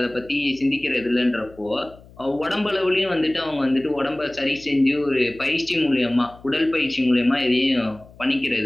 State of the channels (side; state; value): left; noise; hum, 23 dB below the sound